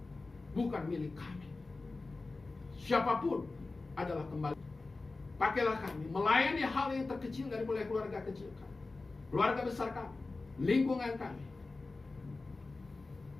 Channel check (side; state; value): right; quieter; 3.5 dB